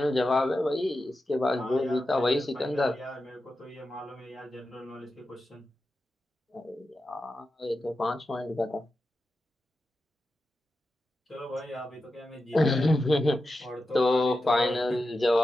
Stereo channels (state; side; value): normal; both; correlation 0.91